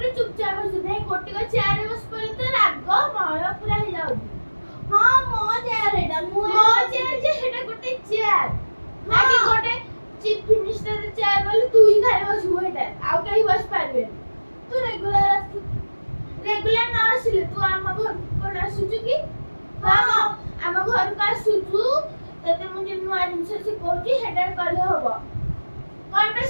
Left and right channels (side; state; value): both; inverted; correlation -1.00